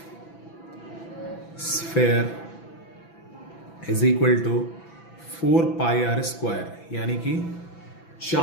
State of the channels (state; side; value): late; right; 6.0 ms